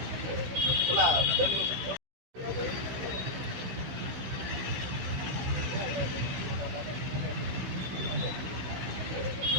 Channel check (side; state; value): left; late; 16 ms